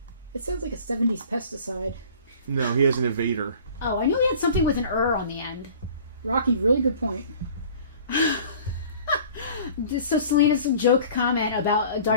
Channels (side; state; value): both; inverted; correlation -0.47